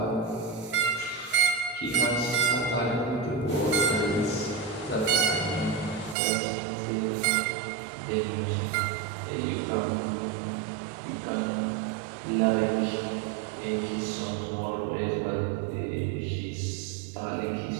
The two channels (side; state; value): left; drops out; at 6.2 s